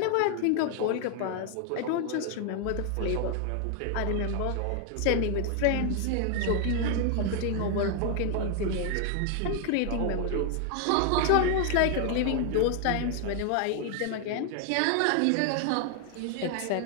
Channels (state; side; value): different; both; correlation 0.00